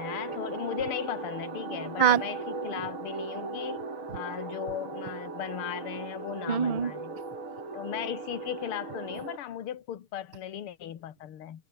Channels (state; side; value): late; right; 6.6 ms